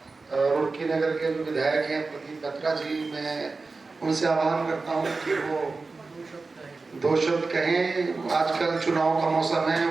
रुड़की नगर के जो विधायक हैं प्रदीप बत्रा जी, मैं उनसे आह्वान करता हूं कि वो दो शब्द कहें। आजकल चुनाव का मौसम है,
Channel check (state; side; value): quieter; left; 3.9 dB